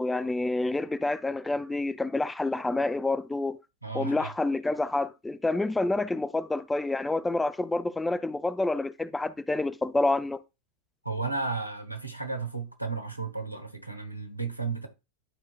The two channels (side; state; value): both; normal; correlation 0.77